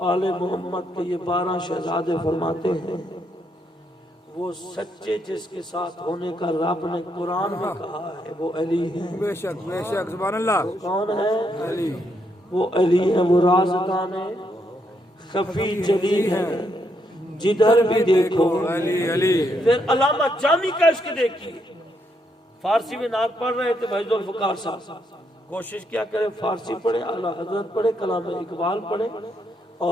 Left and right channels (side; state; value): both; normal; correlation 0.77